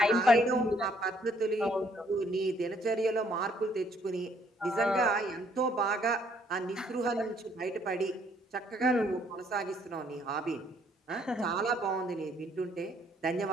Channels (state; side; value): normal; both; correlation 0.66